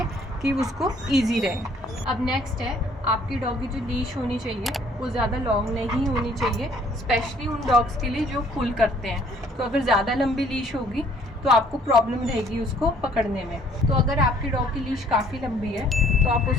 कि उसको ईजी रहे। अब नेक्स्ट है, आपकी डॉग की जो लीश होनी चाहिए वो ज़्यादा लॉन्ग नहीं होनी चाहिए, स्पेशली उन डॉग्स के लिए जो पुल करते हैं। तो अगर ज़्यादा लंबी लीश होगी तो आपको प्रॉब्लम रहेगी उसको पकड़ने में। तो अगर आपकी डॉग की लीश काफ़ी लंबी है तो आप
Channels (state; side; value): normal; both; correlation 0.60